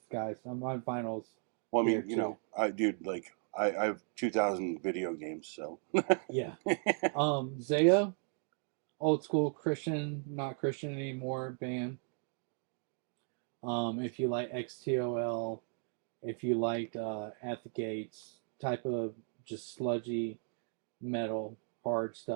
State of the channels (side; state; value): left; silent; 54 dB below the other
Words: guys. My vinyls here too. I have 2,000 video games, so yeah. Zao, old school Christian, not Christian anymore band. If you like XTOL, if you liked At the Gates type of just sludgy metal, hard